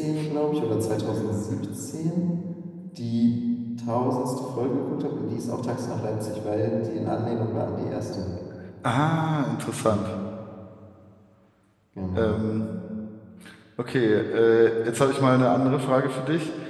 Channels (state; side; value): identical; both; correlation 1.00